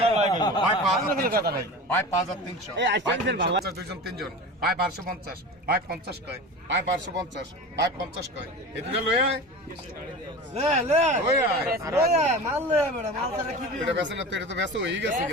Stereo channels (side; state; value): both; normal; correlation 0.32